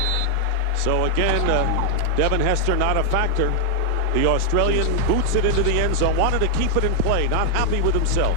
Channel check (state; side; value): different; both; correlation 0.00